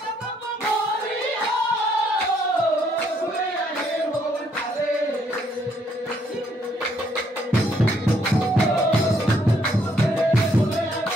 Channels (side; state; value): both; normal; correlation 0.70